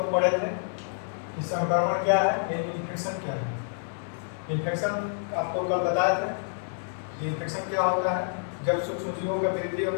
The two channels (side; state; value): right; silent; digital silence